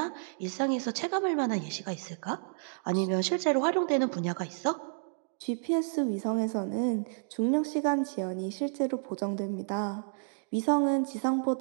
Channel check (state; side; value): silent; left; digital silence